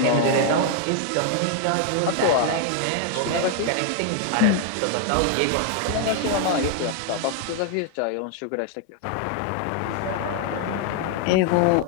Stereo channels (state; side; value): different; both; correlation 0.00